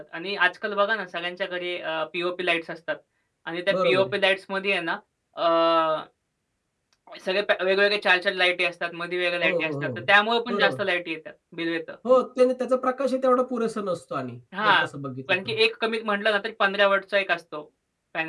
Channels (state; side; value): identical; both; correlation 1.00